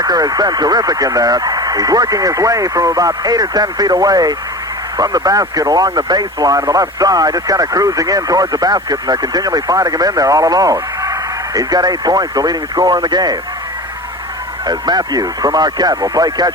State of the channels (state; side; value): normal; both; correlation 0.33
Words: has been terrific in there. He's working his way from about 8 or 10 feet away from the basket along the baseline on the left side, just kind of cruising in towards the basket, and they're continually finding him in there all alone. He's got 8 points, the leading scorer in the game. As Matthews from Marquette will play